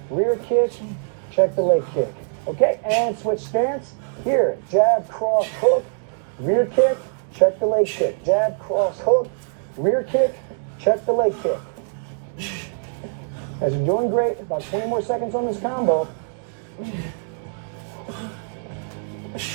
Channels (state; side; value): silent; left; digital silence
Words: rear kick, check the leg kick. Okay, and switch stance. Here, jab, cross, hook, rear kick, check the leg kick. Jab, cross, hook, rear kick, check the leg kick. As you're doing great, about 20 more seconds on this combo.